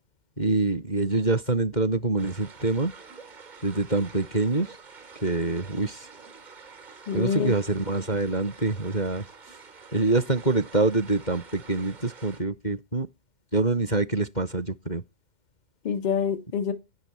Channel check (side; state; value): right; late; 2.1 ms